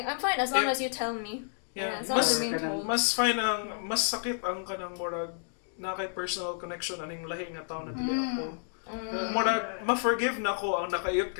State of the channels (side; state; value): right; silent; digital silence